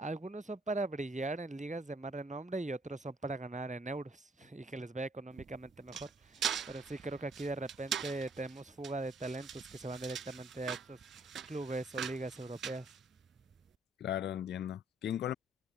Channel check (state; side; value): normal; both; correlation 0.63